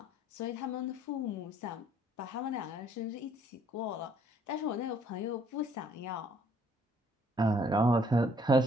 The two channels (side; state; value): both; normal; correlation 0.63